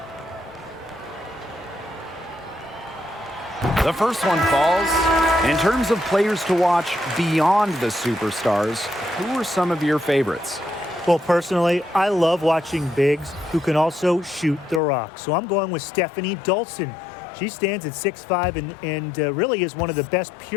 The first one falls. In terms of players to watch beyond the superstars, who are some of your favorites? Well, personally, I love watching bigs who can also shoot the rock. So I'm going with Stephanie Dolson. She stands at 6'5" and really is one of the best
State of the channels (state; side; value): drops out; right; at 14.8 s